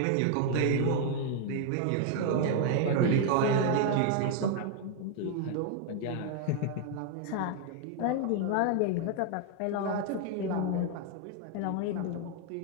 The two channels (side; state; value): both; different; correlation 0.00